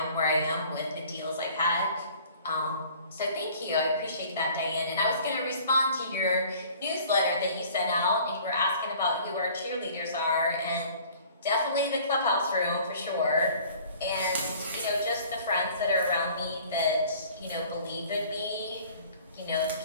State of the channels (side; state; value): both; inverted; correlation -0.51